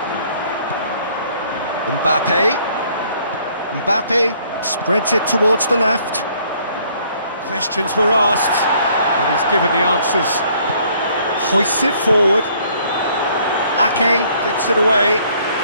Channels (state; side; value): inverted; both; correlation -0.62